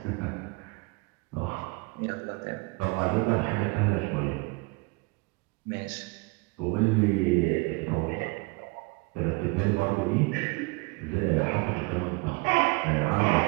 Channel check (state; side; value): quieter; left; 26.7 dB